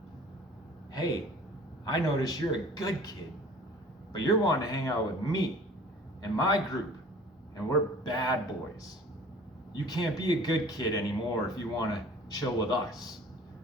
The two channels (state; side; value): normal; both; correlation 0.48